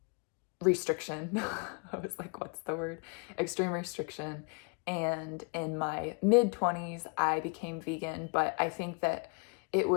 restriction. I was like, what's the word? Extreme restriction. And in my mid 20s, I became vegan, but I think that it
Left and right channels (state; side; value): quieter; right; 36.0 dB